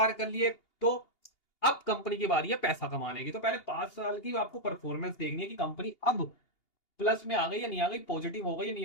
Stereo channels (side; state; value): right; late; 2.8 ms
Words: कर लिए, तो अब कंपनी की बारी है पैसा कमाने की। तो पहले 5 साल की आपको परफॉर्मेंस देखनी है कि कंपनी अब प्लस में आ गई या नहीं आ गई, पॉजिटिव हो गई या नहीं